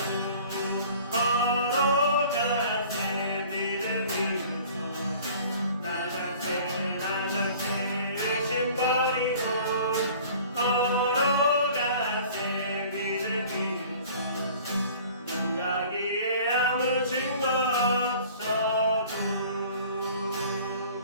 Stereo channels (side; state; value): both; inverted; correlation -0.48